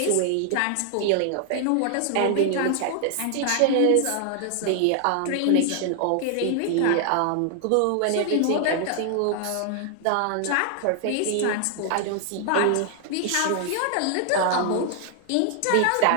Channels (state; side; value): different; both; correlation 0.00